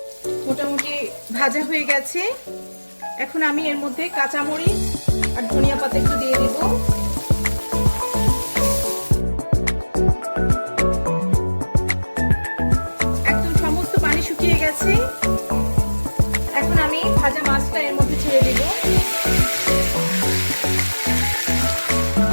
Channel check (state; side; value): inverted; both; correlation -1.00